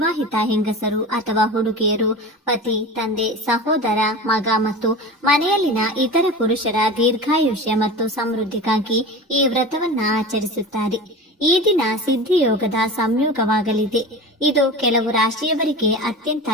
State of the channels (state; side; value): normal; both; correlation 0.31